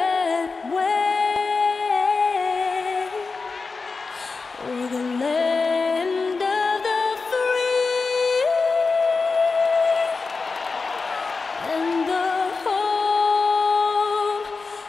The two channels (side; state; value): right; quieter; 4.3 dB